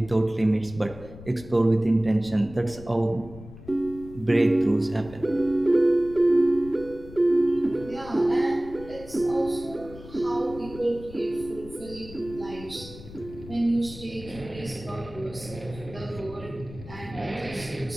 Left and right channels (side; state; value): left; noise; rumble, 16 dB below the sound